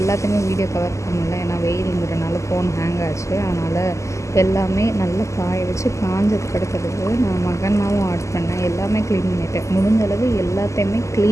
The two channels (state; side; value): late; right; 0.14 ms